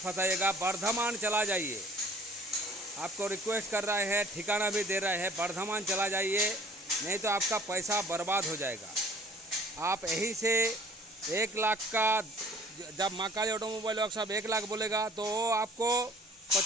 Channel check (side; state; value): both; normal; correlation 0.52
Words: बर्धमान चला जाइए। आपको रिक्वेस्ट कर रहे हैं, ठिकाना भी दे रहे हैं, बर्धमान चला जाइए, नहीं तो आपका पैसा बर्बाद हो जाएगा। आप यहीं से 1 लाख का, जब महाकाली ऑटोमोबाइल वर्कशॉप 1 लाख बोलेगा तो वो आपको